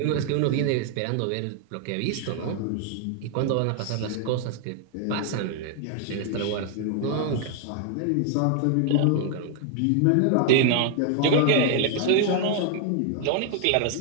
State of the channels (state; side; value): different; both; correlation 0.00